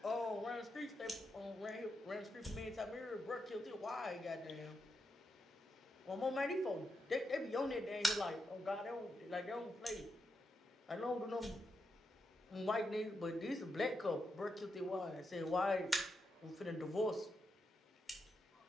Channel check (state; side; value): normal; both; correlation 0.84